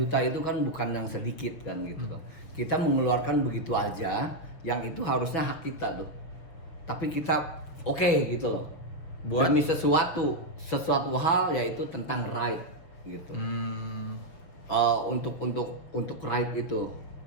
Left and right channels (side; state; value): right; late; 6.5 ms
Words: itu kan bukan yang sedikit kan gitu kan. Kita mengeluarkan begitu aja, yang itu harusnya hak kita tuh. Tapi kita oke gitu loh. Buat Demi sesuatu hal yaitu tentang right gitu. Untuk right itu,